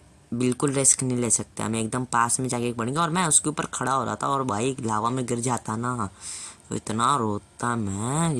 बिल्कुल रिस्क नहीं ले सकते, हमें एकदम पास में जाके पड़ेंगे। और मैं उसके ऊपर खड़ा हो रहा था और भाई लावा में गिर जाता ना तो इतना रोता मैं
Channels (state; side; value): identical; both; correlation 1.00